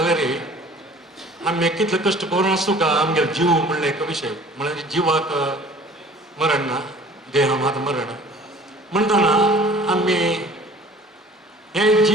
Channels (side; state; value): both; normal; correlation 0.48